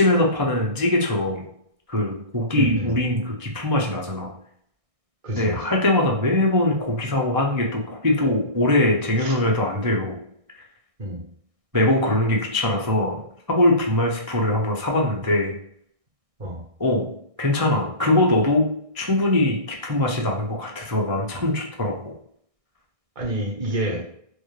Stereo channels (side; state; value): left; late; 1.6 ms